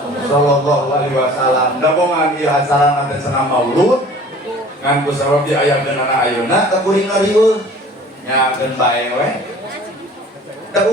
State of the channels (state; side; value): normal; both; correlation 0.47